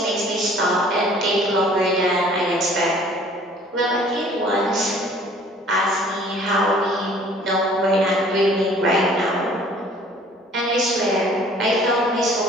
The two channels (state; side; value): normal; both; correlation 0.53